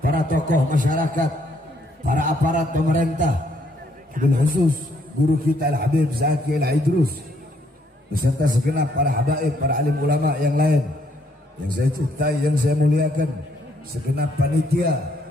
para tokoh masyarakat, para aparat pemerintah, bil khusus guru kita Al-Habib Zaki Al-Idrus, beserta segenap para habaib, para alim ulama yang lain yang saya cintai, yang saya muliakan, segenap panitia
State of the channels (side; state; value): both; normal; correlation 0.69